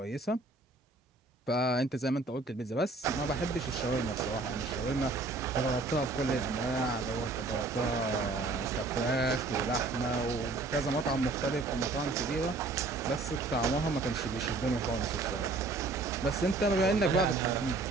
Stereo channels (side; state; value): left; quieter; 3.5 dB